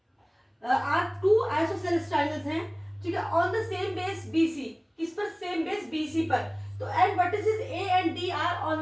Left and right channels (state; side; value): identical; both; correlation 1.00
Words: are two isosceles triangles हैं, ठीक है, on the same base BC, किस पर, सेम बेस बीसी पर। तो and vertices A and D are